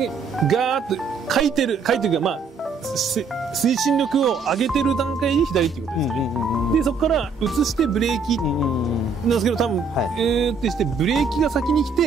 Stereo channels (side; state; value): left; quieter; 4.7 dB